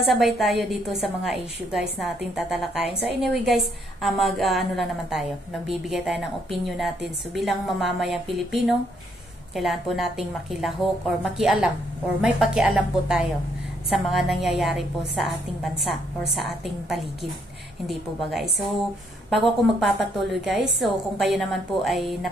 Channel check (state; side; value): normal; both; correlation 0.71